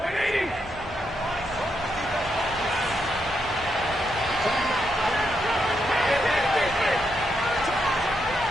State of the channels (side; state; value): both; normal; correlation 0.81